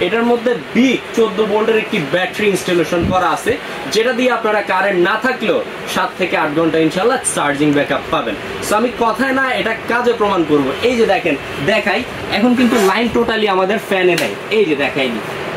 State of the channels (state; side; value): identical; both; correlation 1.00